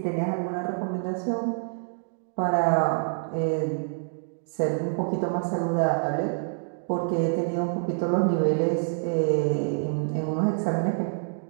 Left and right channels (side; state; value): left; silent; digital silence